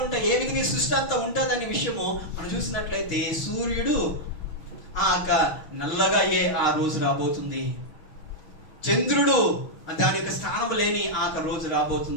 ఉంటాయి, ఏ విధంగా ఈ సృష్టి అంతా ఉంటుందనే విషయము మనం చూసినట్లయితే, సూర్యుడు నల్లగా ఆ రోజు రాబోతుంది, చంద్రుడు దాని యొక్క స్థానం లేని రోజు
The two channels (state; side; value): late; right; 6.4 ms